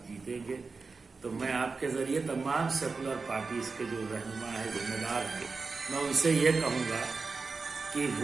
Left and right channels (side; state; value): left; quieter; 4.4 dB